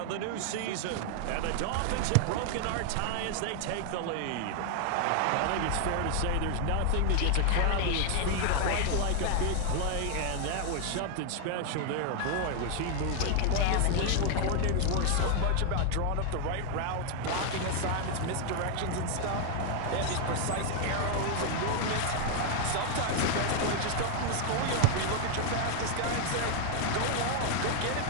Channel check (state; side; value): different; both; correlation 0.00